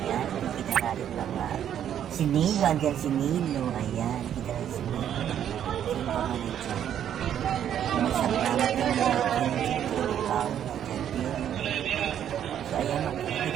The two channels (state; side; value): quieter; left; 9.9 dB